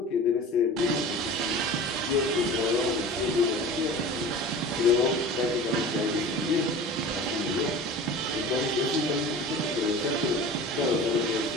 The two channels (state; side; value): normal; both; correlation 0.37